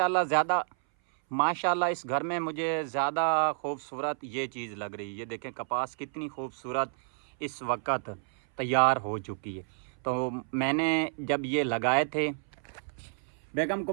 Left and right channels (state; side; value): silent; left; 58 dB below the other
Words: माशाल्लाह इस घर में मुझे ज़्यादा खूबसूरत ये चीज़ लग रही है। ये देखें कपास कितनी खूबसूरत इस वक्त तैयार हो चुकी है। तो मैंने जब ये लगाए थे, बेगम